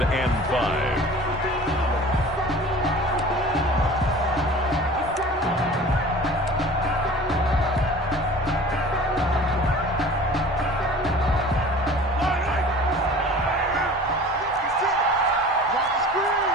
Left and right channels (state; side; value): normal; both; correlation 0.42